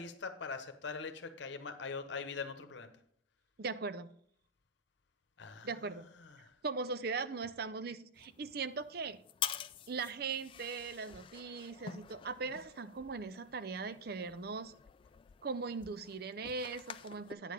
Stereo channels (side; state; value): both; normal; correlation -0.05